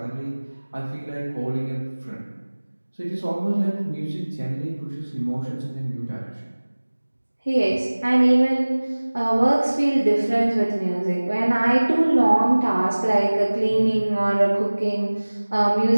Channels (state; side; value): inverted; both; correlation -1.00